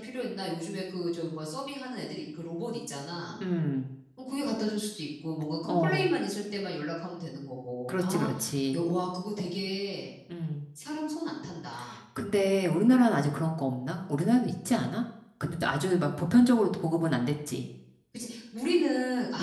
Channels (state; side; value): identical; both; correlation 1.00